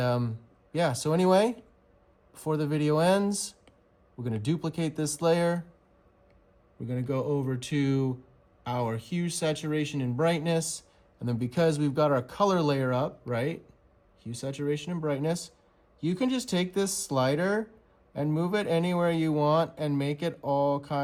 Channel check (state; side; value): identical; both; correlation 1.00